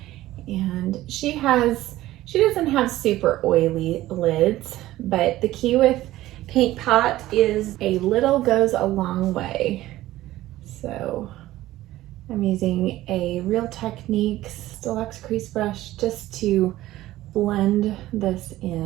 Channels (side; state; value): left; quieter; 15.7 dB